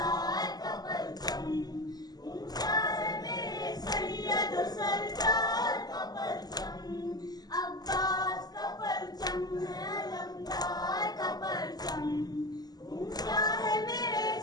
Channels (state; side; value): late; right; 0.19 ms